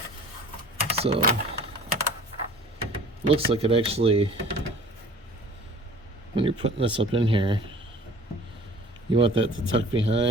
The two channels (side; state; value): both; normal; correlation 0.47